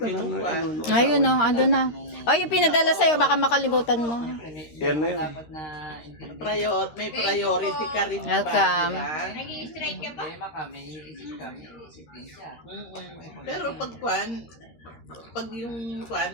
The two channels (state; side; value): late; right; 13 ms